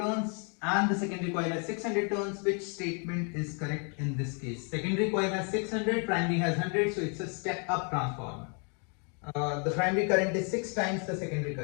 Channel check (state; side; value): quieter; right; 38.2 dB